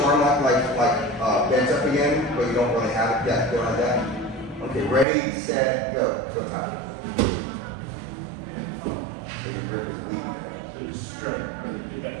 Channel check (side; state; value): left; drops out; at 5.1 s